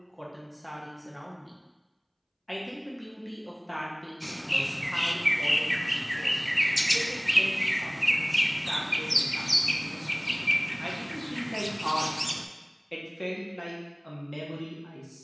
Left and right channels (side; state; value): both; identical; correlation 1.00